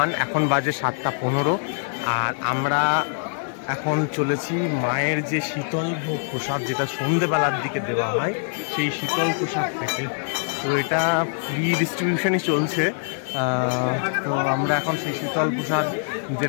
1, এখন বাজে 7:15। আর আমরা এখন চলেছি মায়ের যে শীতল ভোগ প্রসাদ, যেটা সন্ধেবেলার দিকে দেওয়া হয়, সেই শীতল প্রসাদ থেকে। তো এটা ফ্রি ডিস্ট্রিবিউশনই চলছে। তো আমরা এখন সেই শীতল প্রসাদ,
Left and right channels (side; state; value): right; silent; digital silence